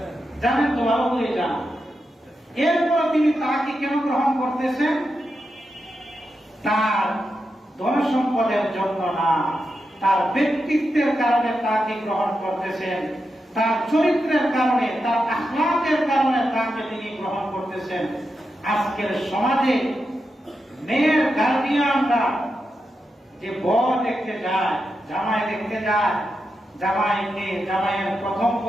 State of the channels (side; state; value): both; normal; correlation 0.87